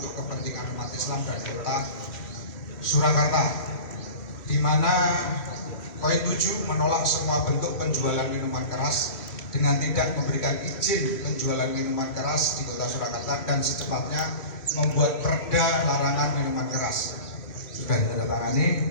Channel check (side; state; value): right; late; 3.1 ms